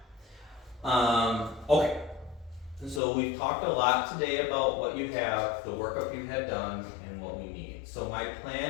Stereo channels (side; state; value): right; drops out; at 3.0 s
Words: that. Okay. So we've talked a lot today about what you have, the workup you had done, and what we need. So my